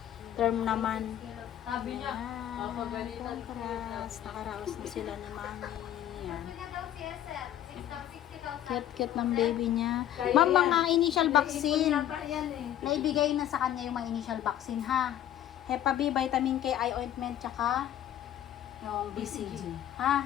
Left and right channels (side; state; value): right; quieter; 11.7 dB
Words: Term naman. Sabi niya, Congrats. Nakaraos na sila ni Mami. Ayan. Cute ng baby niya. Ma'am, mga initial vaccine. Naibigay na sa kanya yung mga initial vaccine, ha? Hepa B, vitamin K, eye ointment, tsaka yung BCG.